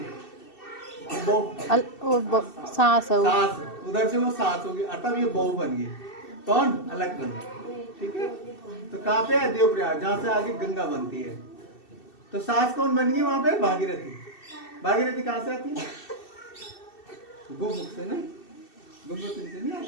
बहू, सास है वो। सास, उधर से वो सास होगी, अतः ये बहू बन गई। कौन? अलकनंदा। ठीक है, तो कहाँ पे है? देवप्रयाग, जहाँ से आगे गंगा बनती है। तो सास कौन बन गई वहां पे? भागीरथी। भागीरथी कहाँ से आती है? गोमुख से ना, गंगोत्री से नहीं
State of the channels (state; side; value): late; right; 2.7 ms